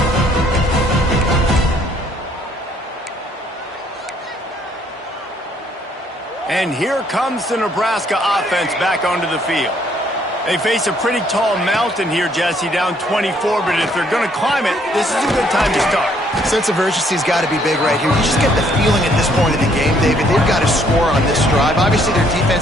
And here comes the Nebraska offense back onto the field. They face a pretty tall mountain here, Jesse, down 24, but if they're going to climb it, this is a good time to start. Sense of urgency's got to be big right here. You just get the feeling at this point of the game, David, they've got to score on this drive. Obviously, their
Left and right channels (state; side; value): normal; both; correlation 0.66